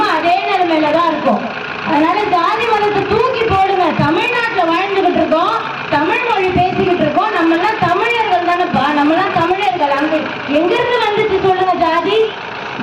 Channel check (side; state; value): both; identical; correlation 1.00